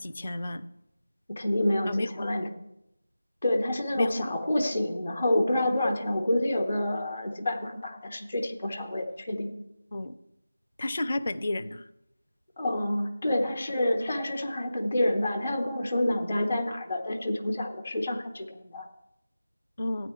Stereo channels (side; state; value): both; inverted; correlation -0.92